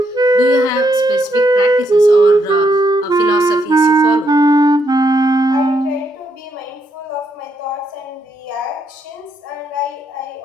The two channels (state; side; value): normal; both; correlation 0.77